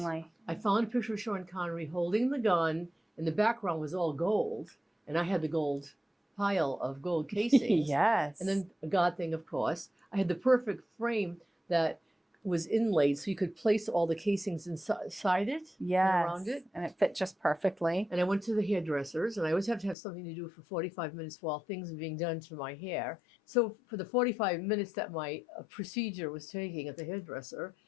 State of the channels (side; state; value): right; drops out; at 20.0 s